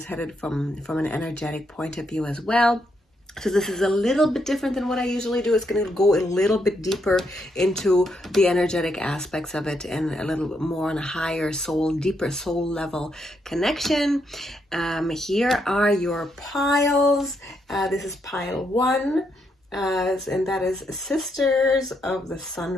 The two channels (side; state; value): both; normal; correlation 0.78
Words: headed from an energetic point of view as well. So this is a little bit different than what I usually do. It's going to go a little bit deeper into the energetic aspects of it and a little bit more on a higher soul, deeper soul level connection. Here are your piles. This is pile 1. And that is Sisters of the Sun